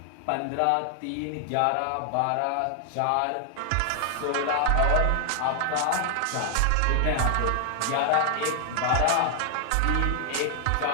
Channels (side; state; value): both; different; correlation 0.00